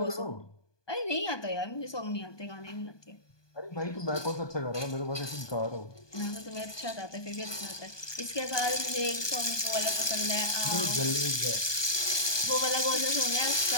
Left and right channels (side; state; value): right; late; 1.2 ms